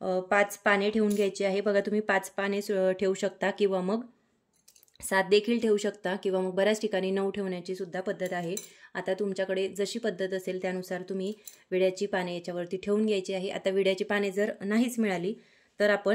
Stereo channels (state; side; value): identical; both; correlation 1.00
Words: 5 पाने ठेवून घ्यायची आहे। बघा तुम्ही 5 पाने ठेवू शकता किंवा मग 7 देखील ठेवू शकता किंवा मग बऱ्याच ठिकाणी 9 ठेवण्याची सुद्धा पद्धत आहे। आता तुमच्याकडे जशी पद्धत असेल त्यानुसार तुम्ही विड्याची पाने याच्यावरती ठेवून घ्यायची आहे। आता विड्याची पाने जर नाहीच मिळाली तर